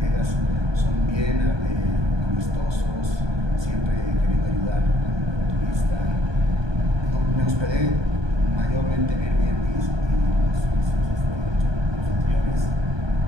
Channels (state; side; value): late; left; 1.2 ms